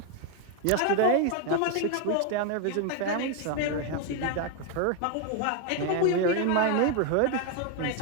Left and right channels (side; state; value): both; different; correlation 0.01